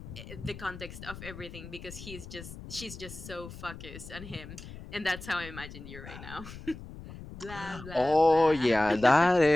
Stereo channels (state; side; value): noise; left; rumble, 14 dB below the sound